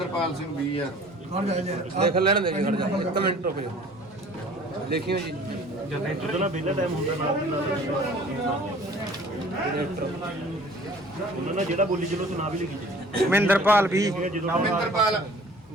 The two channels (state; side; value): normal; both; correlation 0.50